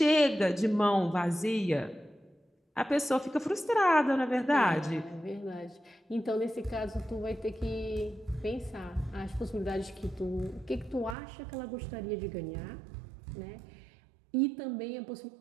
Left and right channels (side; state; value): left; drops out; at 11.2 s